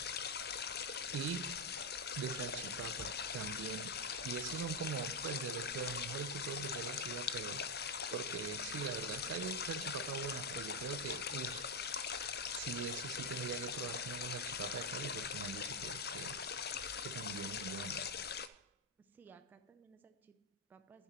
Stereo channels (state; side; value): normal; both; correlation 0.03